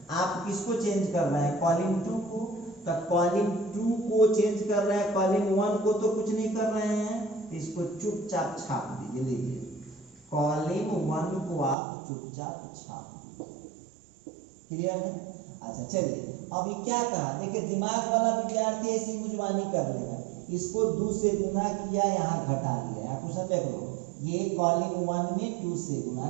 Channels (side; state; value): left; drops out; at 11.8 s